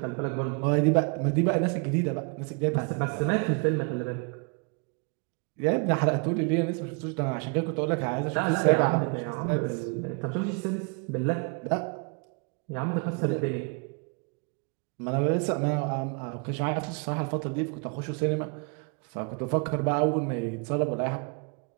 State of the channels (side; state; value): left; quieter; 34.7 dB